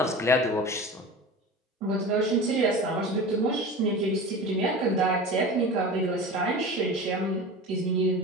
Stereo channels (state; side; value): normal; both; correlation 0.33